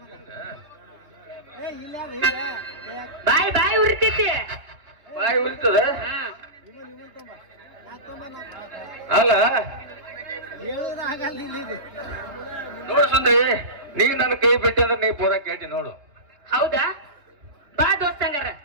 ಬಾಯ್ ಬಾಯ್ ಉರಿತೈತಿ. ಬಾಯಿ ಉರಿತದ ಅಲ್ಲ? ನೋಡು ಸುಂದ್ರಿ, ನೀ ನನ್ನ ಕೈ ಬಿಟ್ಟಿ ಅಂದ್ರೆ ನೀ ಪೂರ ಕೇಟಿ ನೋಡು. ಹೌದಾ? ಬಾ ದೋಸ್ತಂಗಾರ.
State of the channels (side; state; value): left; late; 3.3 ms